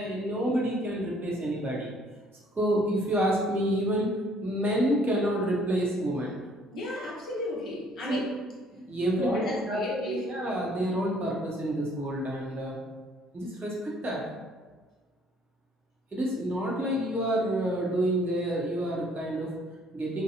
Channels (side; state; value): both; normal; correlation 0.61